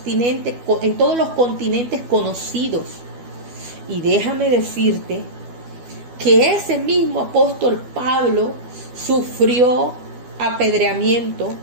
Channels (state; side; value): late; left; 12 ms